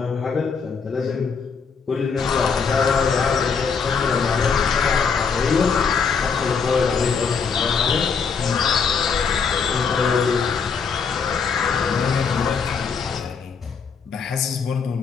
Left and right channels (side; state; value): right; quieter; 5.8 dB